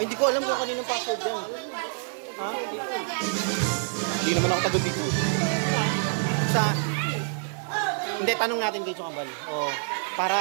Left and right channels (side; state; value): left; silent; 60 dB below the other